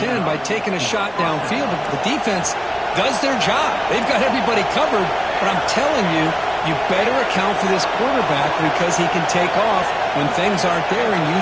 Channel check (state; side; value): identical; both; correlation 1.00